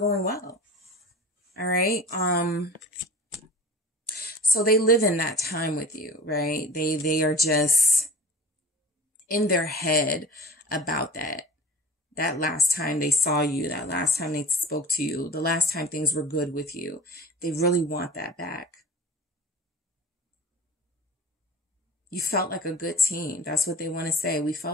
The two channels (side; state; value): both; normal; correlation 0.38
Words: well. All right. So they live in that time with you, right? They are just in their head about that last time they saw you, that last time they spoke to you, the last time things were good with you. They really want that back. You felt like a good team. That's what they want to say. We